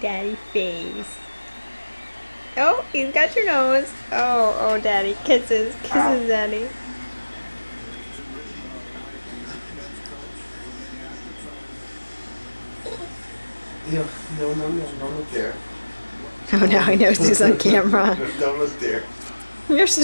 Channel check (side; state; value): both; inverted; correlation -1.00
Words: face. Oh, he's got your nose. Oh, oh, daddy. Kisses. Kisses, daddy. Yeah, no, don't look there. Oh, now he knows he's on camera. Don't look there. You're